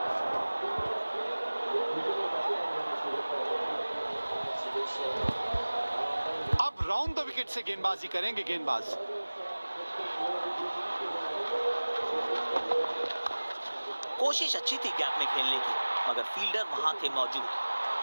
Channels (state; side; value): inverted; both; correlation -1.00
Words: अब राउंड द विकेट से गेंदबाजी करेंगे गेंदबाज। कोशिश अच्छी थी गैप में खेलने की, मगर फील्डर वहां थे मौजूद।